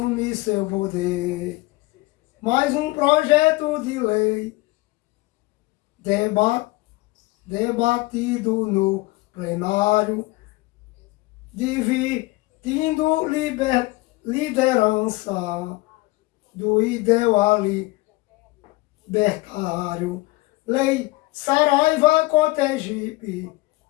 seu poder. Mais um projeto de lei debatido no plenário, dividindo liderança do ideal libertário. Lei Saraiva Cotegipe,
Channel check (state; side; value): quieter; right; 21.1 dB